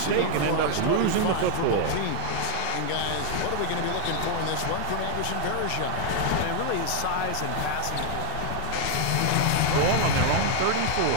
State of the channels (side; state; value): both; different; correlation 0.00